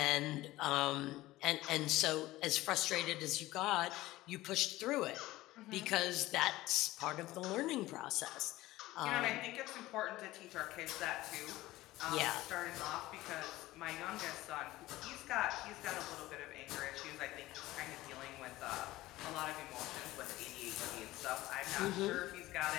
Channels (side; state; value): right; quieter; 17.5 dB